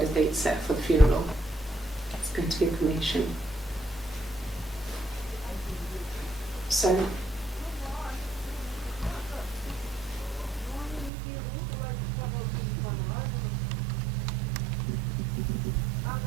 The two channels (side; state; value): left; drops out; at 11.1 s